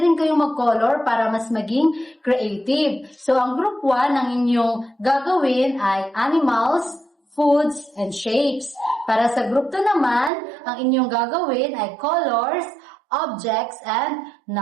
kayong mag-color para mas maging creative. So ang group 1 ang inyong gagawin ay animals, foods, and shapes. Para sa group 2 naman, ang inyong gagawin ay colors, objects, and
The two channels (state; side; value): drops out; left; at 10.3 s